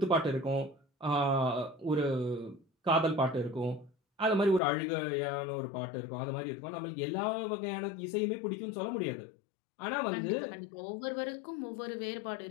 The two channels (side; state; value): right; drops out; at 4.6 s